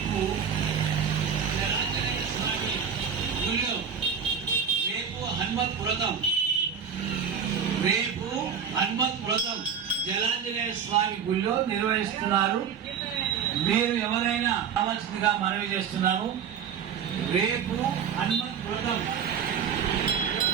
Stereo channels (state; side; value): quieter; left; 7.1 dB